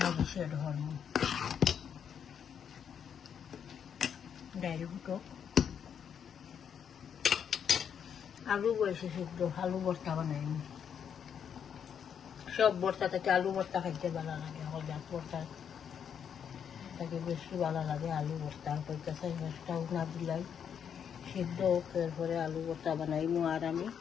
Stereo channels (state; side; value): quieter; right; 7.9 dB